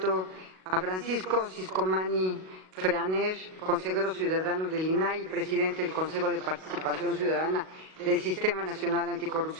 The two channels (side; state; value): left; late; 38 ms